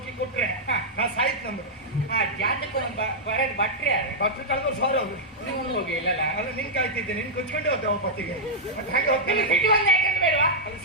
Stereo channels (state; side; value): normal; both; correlation -0.06